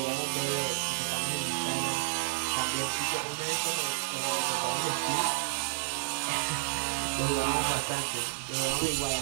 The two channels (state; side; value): silent; left; 57 dB below the other